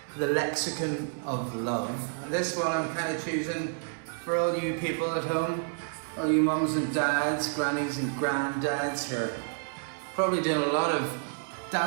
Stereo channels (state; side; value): silent; left; 58 dB below the other